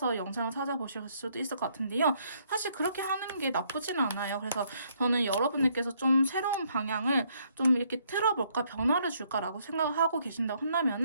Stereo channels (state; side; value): inverted; both; correlation -0.69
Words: 영상을 찾아보실 수도 있을 것 같은데요. 사실 그렇게 하는 게 나쁘지는 않아요. 그래서 저는 여러분들께서 좀 새로운 방향을 좀 이렇게 틀어볼까 변화를 줄까라고 생각을 하고 계신다고